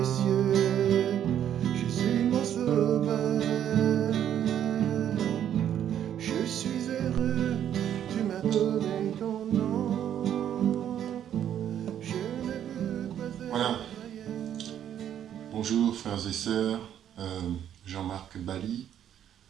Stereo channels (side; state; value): left; quieter; 10.1 dB